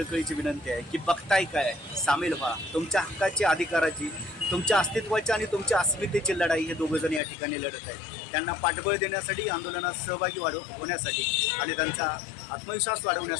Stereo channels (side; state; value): right; drops out; at 7.2 s